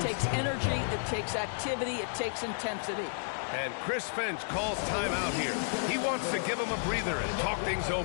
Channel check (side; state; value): right; silent; digital silence